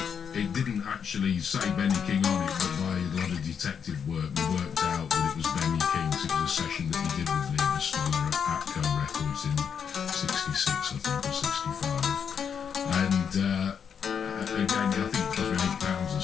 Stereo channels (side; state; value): right; quieter; 7.2 dB